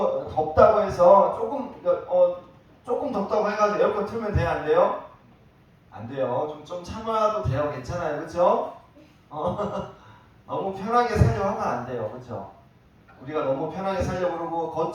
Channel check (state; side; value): identical; both; correlation 1.00